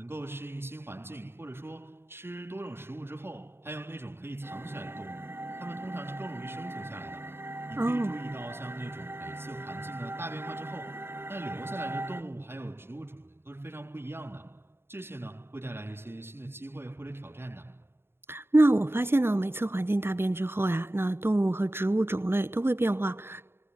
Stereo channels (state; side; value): late; left; 0.11 ms